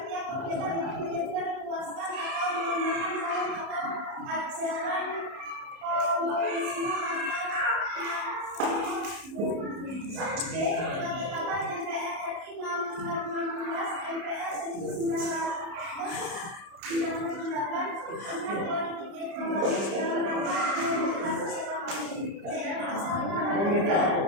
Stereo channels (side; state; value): left; late; 30 ms